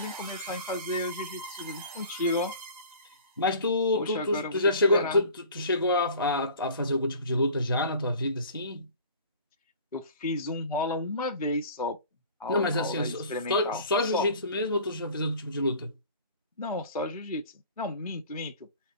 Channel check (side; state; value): both; inverted; correlation -0.45